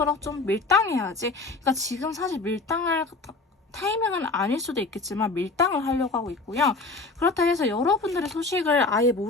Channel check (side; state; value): right; quieter; 3.6 dB